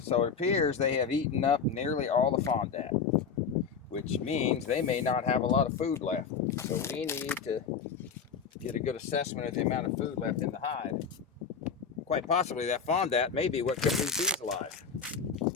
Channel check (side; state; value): right; quieter; 6.2 dB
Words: so it appears they have eaten up nearly all the fondant, which means they may not have a lot of food left. So we need to get a good assessment of the amount of food left in the hive. Quite possibly that fondant may be what kept these bees alive.